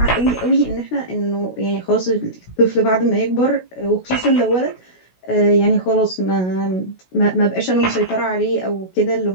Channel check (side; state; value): right; late; 16 ms